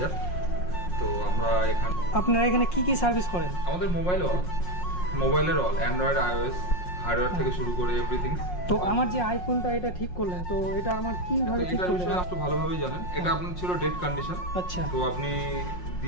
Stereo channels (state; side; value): late; right; 5.5 ms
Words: তো আমরা আপনারা এখানে কি কি সার্ভিস করেন? আমাদের মোবাইলের অল অ্যান্ড্রয়েড, আইওএস, হার্ডওয়্যার থেকে শুরু করে এভরিথিং। তো আমার যে আইফোনটা এটা ঠিক করলেন, তো এটা আমার কিভাবে ঠিক করলেন? এটা আপনি ভালোভাবেই জানেন। এটা আপনার ছিল ডেড কন্ডিশন। আচ্ছা। তো আপনি